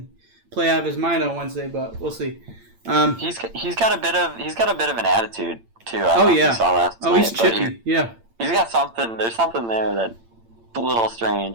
play out of his mind on Wednesday, but we'll see. He's got a bit of an attitude too. You saw last night, he's chippy. He's got something. There's something there that's a little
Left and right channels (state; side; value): late; left; 8.8 ms